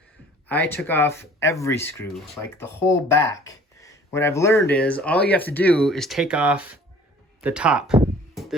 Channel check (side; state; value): both; normal; correlation 0.51